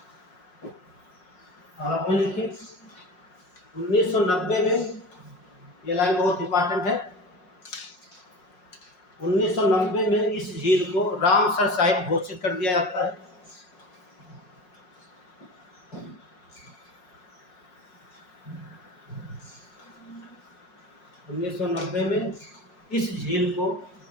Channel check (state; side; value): late; right; 5.5 ms